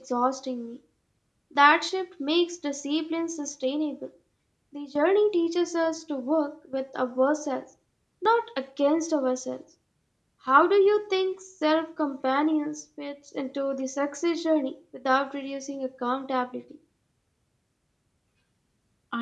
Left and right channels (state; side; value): identical; both; correlation 1.00